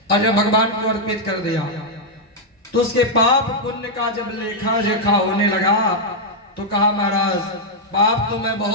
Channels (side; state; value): both; normal; correlation -0.03